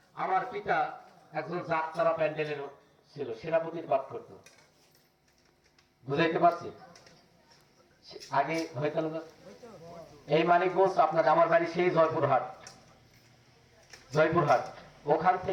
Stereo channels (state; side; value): identical; both; correlation 1.00